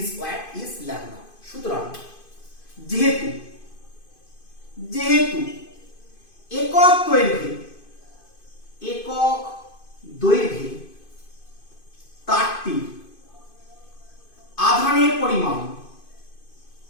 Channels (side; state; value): right; late; 2.5 ms